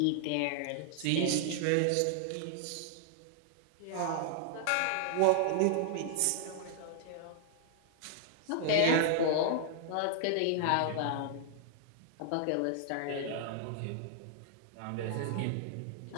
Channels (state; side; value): different; both; correlation -0.01